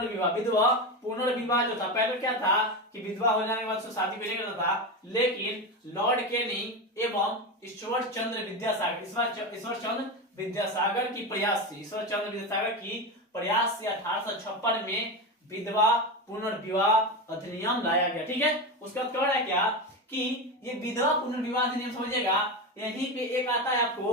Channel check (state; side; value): normal; both; correlation 0.18